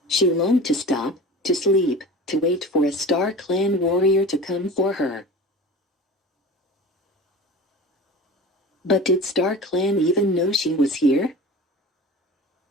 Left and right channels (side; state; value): both; normal; correlation 0.35